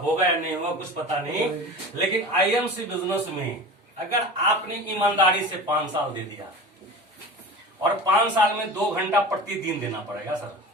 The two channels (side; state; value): both; normal; correlation 0.34